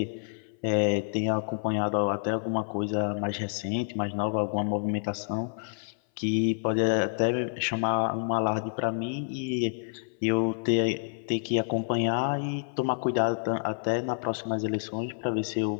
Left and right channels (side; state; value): right; silent; 56 dB below the other